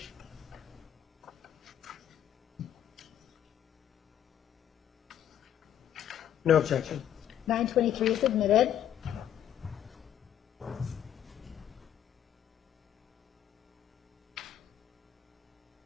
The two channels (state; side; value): quieter; right; 10.5 dB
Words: No objection. 923 is admitted.